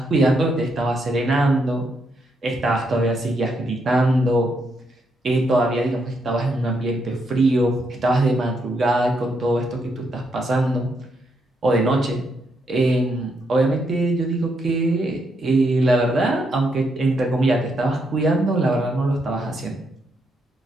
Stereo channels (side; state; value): both; normal; correlation 0.78